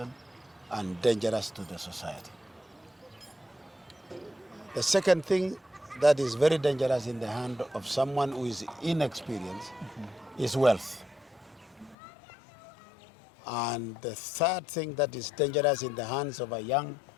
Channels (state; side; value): drops out; right; at 12.0 s